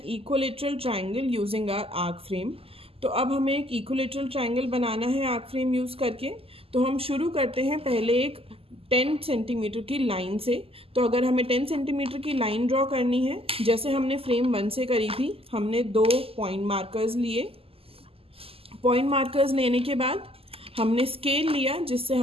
equilateral triangle using our arc frame. तो अब हमें एक इक्विलेटरल ट्राइंगल बनाना है आर्क फ्रेम यूज़ करके। तो हम शुरू करते हैं पहले एक 10 सेंटीमीटर की लाइन से। तो अगर हमें 10 सेंटीमीटर की लाइन ड्रॉ करनी है, जैसे हमने फ्रेम 1 से करी थी, हमने 2 पॉइंट मार्कर्स लिए। पॉइंट मार्कर्स लेने के बाद हमने स्केल लिया जिससे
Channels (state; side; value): late; left; 0.28 ms